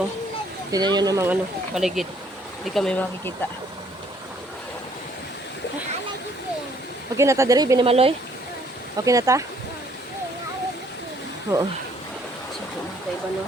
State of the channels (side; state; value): both; normal; correlation 0.63